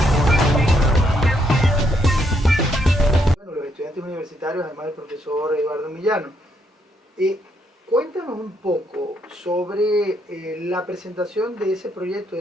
Bueno, los estudiantes universitarios, además del profesor Eduardo Millano. Cuéntanos un poco sobre la presentación de ese proyecto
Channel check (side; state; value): both; normal; correlation 0.75